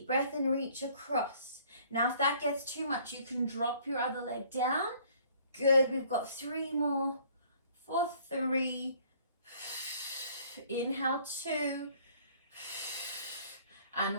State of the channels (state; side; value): inverted; both; correlation -0.57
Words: breath and reach across. Now if that gets too much, you can drop your other leg down. Good. We've got 3 more. For 3. Inhale, 2 and